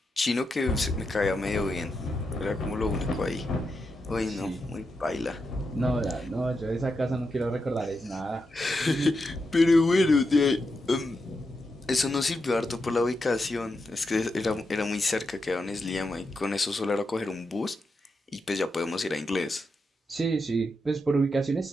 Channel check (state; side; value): normal; both; correlation 0.86